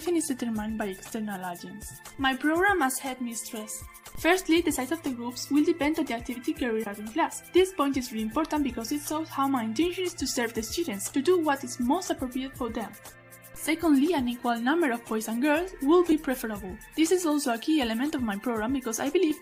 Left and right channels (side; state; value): both; identical; correlation 1.00